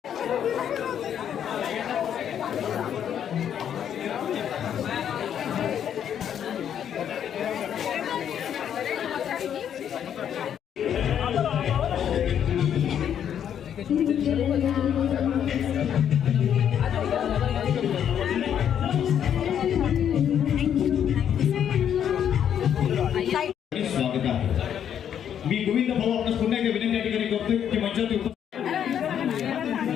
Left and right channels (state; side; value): quieter; right; 9.2 dB